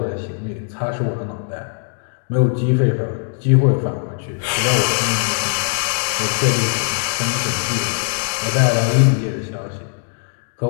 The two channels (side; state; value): right; silent; 59 dB below the other